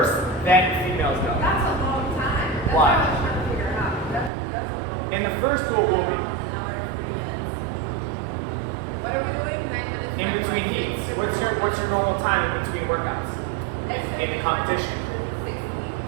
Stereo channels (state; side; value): drops out; left; at 4.3 s